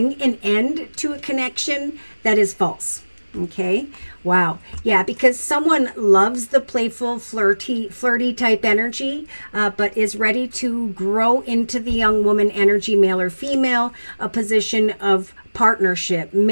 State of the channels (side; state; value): both; inverted; correlation -1.00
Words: an end to a connection that is false. Okay. Wow. Yeah, because someone loves the playful, flirty type energy, but is ready to grow into the young woman energy, male or female, a position of partnership,